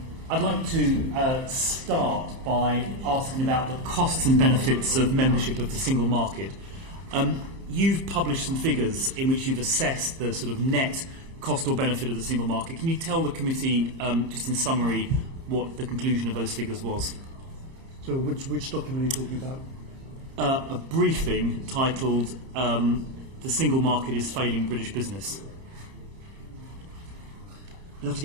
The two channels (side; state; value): left; late; 30 ms